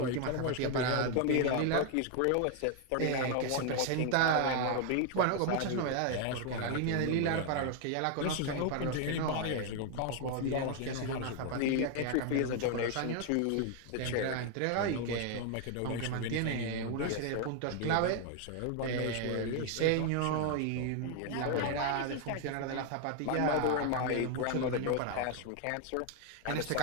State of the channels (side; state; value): both; different; correlation 0.01